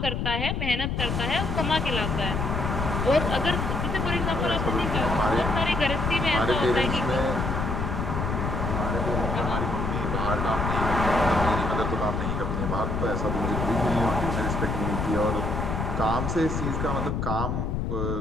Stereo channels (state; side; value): noise; left; rumble, 1 dB below the sound